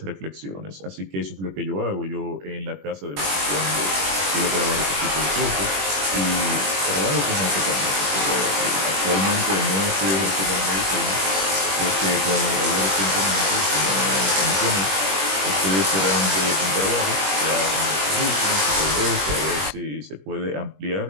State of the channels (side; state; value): left; late; 21 ms